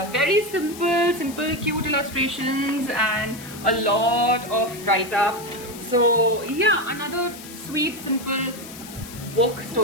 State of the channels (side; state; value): left; noise; hiss, 15 dB below the sound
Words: very simple cute illustrations and a lot of write-up. So yeah, another sweet simple book,